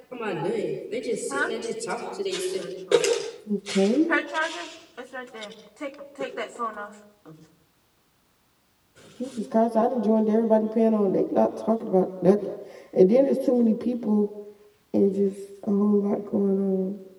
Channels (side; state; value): both; identical; correlation 1.00